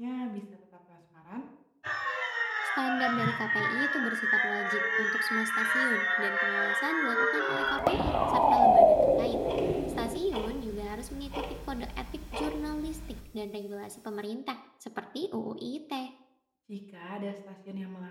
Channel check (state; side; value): identical; both; correlation 1.00